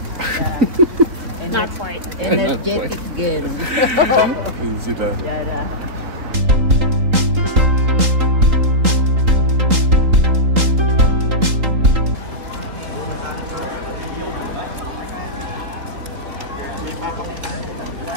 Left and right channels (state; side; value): late; left; 3.8 ms